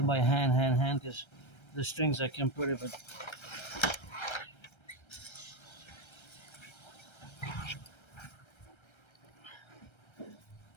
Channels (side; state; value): right; late; 1.3 ms